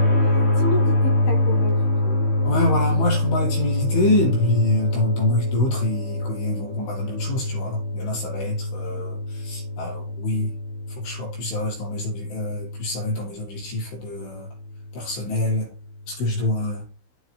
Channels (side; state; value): right; late; 16 ms